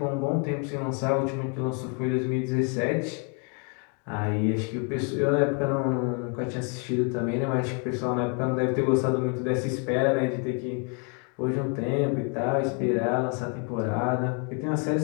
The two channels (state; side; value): quieter; right; 37.8 dB